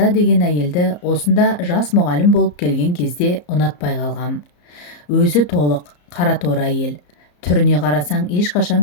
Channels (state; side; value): late; right; 34 ms